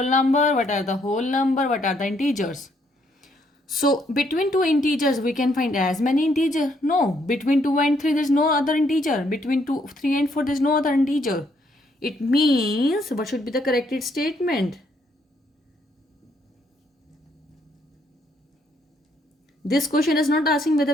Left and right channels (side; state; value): both; normal; correlation 0.71